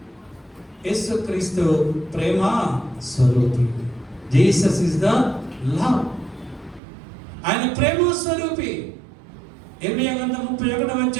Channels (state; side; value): drops out; left; at 6.8 s